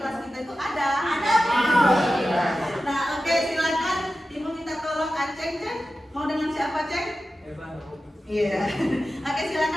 kita itu ada. Nah, oke, silakan ibu minta tolong Aceng, Ceng. Mau dengan siapa, Ceng? Iya. Oke,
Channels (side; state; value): both; normal; correlation 0.93